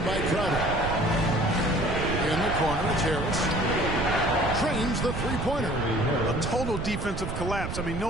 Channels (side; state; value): right; noise; rumble, 5 dB below the sound